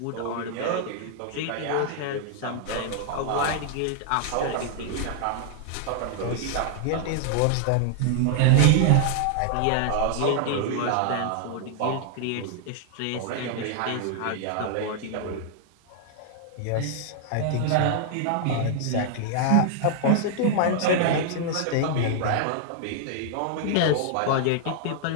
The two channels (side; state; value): both; different; correlation 0.00